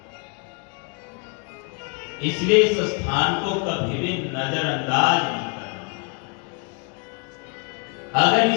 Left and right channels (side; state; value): right; quieter; 35.7 dB